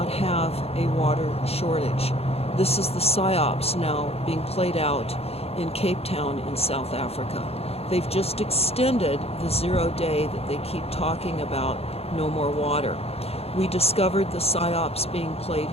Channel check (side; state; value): right; late; 0.29 ms